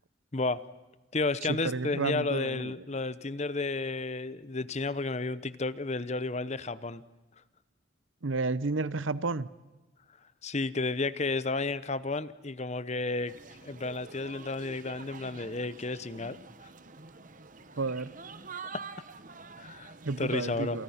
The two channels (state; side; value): normal; both; correlation 0.23